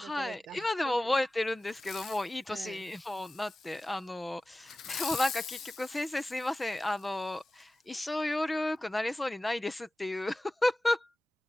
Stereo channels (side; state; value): both; normal; correlation 0.96